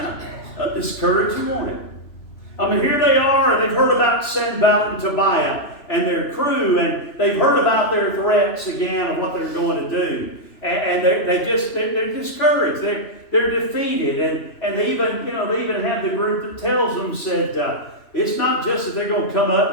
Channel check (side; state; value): right; late; 3.0 ms